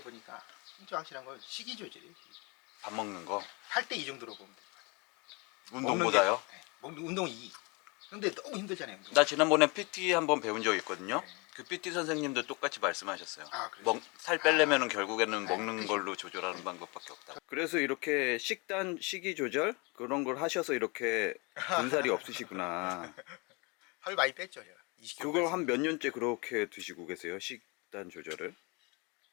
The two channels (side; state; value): right; quieter; 29.3 dB